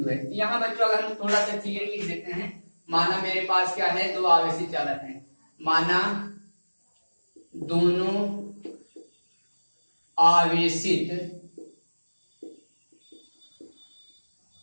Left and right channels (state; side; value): inverted; both; correlation -1.00